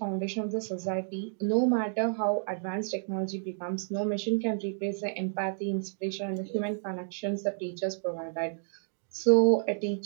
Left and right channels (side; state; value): left; silent; digital silence